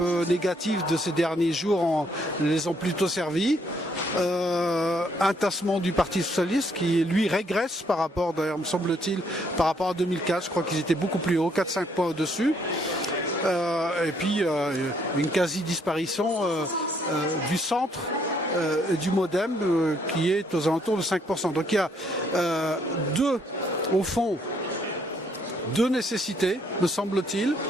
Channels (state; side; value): normal; both; correlation 0.69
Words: négatives de ces derniers jours les ont plutôt servis. Un tassement du Parti Socialiste qui lui régresse par rapport, d'ailleurs me semble-t-il, par rapport à 2004, je crois qu'ils étaient beaucoup plus hauts, 4-5 points au-dessus. Et puis une quasi-disparition du centre du MoDem qui est aux alentours de 5%. Donc il y a au fond, deux nécessités, me semble-t-il,